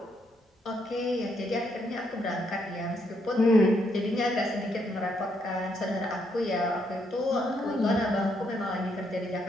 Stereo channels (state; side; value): normal; both; correlation 0.75